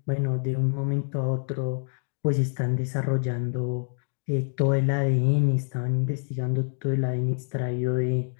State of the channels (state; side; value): silent; right; 61 dB below the other